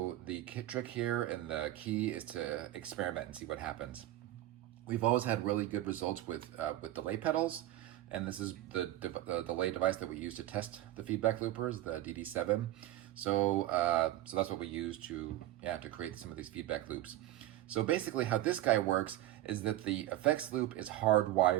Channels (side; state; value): left; quieter; 14.8 dB